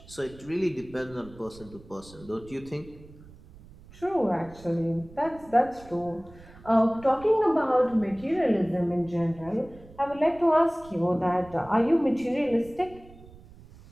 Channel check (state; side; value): noise; right; rumble, 21 dB below the sound